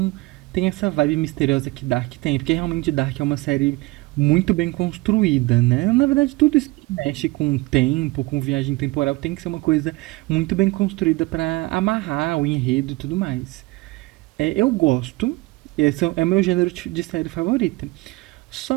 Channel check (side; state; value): left; quieter; 22.1 dB